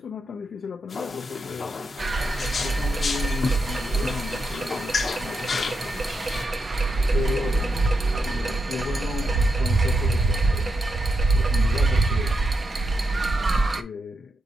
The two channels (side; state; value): both; normal; correlation 0.85